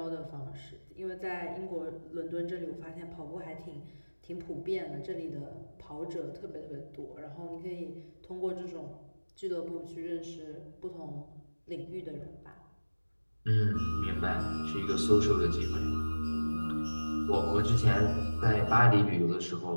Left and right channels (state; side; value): inverted; both; correlation -1.00